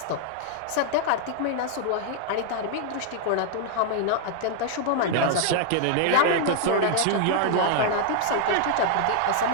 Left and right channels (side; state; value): both; different; correlation 0.00